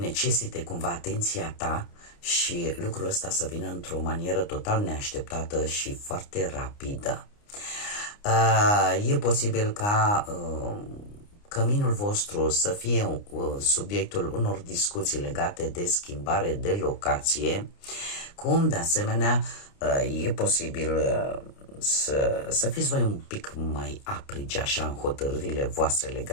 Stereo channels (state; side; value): late; right; 29 ms